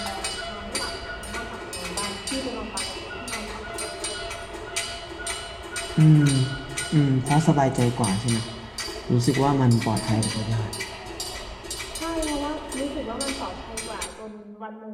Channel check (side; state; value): both; identical; correlation 1.00